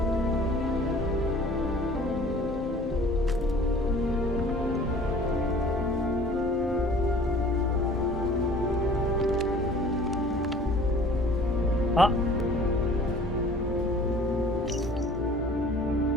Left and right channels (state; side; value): normal; both; correlation 0.49